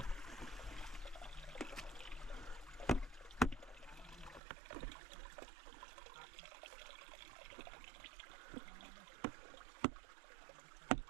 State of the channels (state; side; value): drops out; left; at 4.4 s